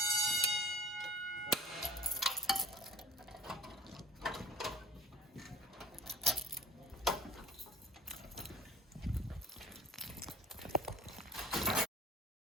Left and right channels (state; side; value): normal; both; correlation 0.42